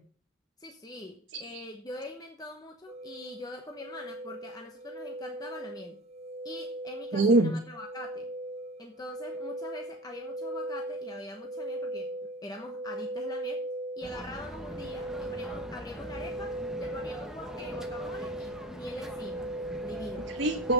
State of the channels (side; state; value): both; normal; correlation 0.35